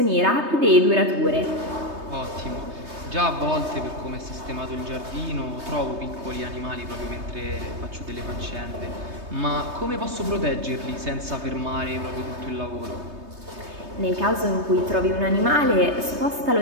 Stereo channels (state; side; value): late; left; 3.2 ms